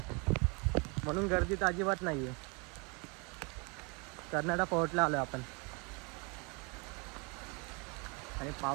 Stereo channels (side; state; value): left; quieter; 31.2 dB